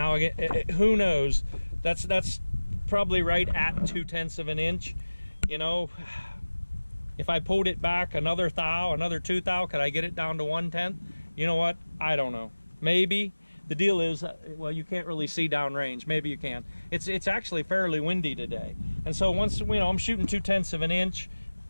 again, who knows? That's probably right at 2/10 of an inch. You know, if I pulled it back another thou, another 2 thou, could I get it down to 1/10? You know what? I don't know. Maybe. The deal is, well, you can't really see downrange. Maybe you can. It's actually fairly windy today, and so once, you know, I'm shooting 2/10 of an inch.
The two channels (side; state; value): both; inverted; correlation -1.00